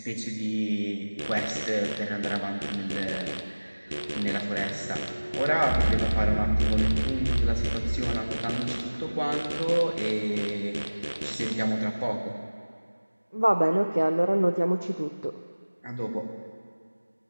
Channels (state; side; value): inverted; both; correlation -1.00